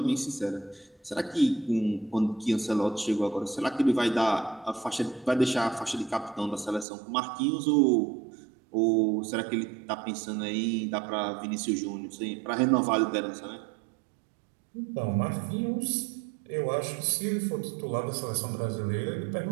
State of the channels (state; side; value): drops out; left; at 6.9 s